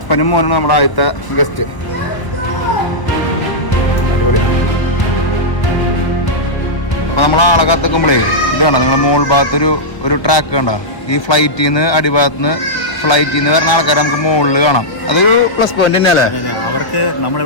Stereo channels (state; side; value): late; right; 1.0 ms